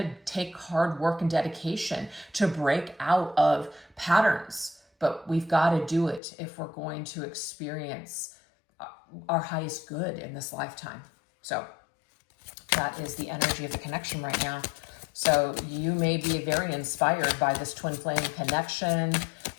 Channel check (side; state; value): right; drops out; at 6.2 s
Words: take hard work and dedication to break out of patterns, but we've got to do it if we're going to experience our highest good in this lifetime. So that is the energy of the connection right now. So you may be very inspired by this twin flame connection,